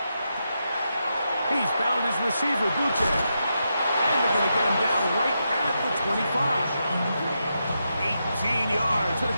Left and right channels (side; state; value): both; inverted; correlation -0.85